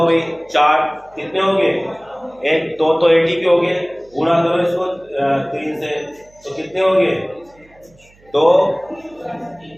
भाई। 4 कितने हो गए? 1 2 तो ATP हो गए, गुणा करो इसको 3 से, तो कितने हो गए? 2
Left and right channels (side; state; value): right; noise; hum, 30 dB below the sound